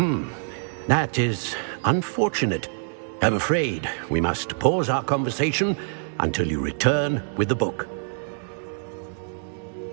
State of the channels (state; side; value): silent; left; digital silence